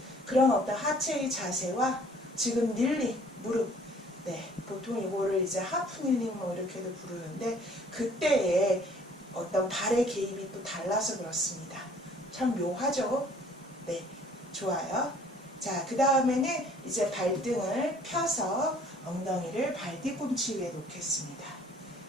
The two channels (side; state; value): both; normal; correlation 0.56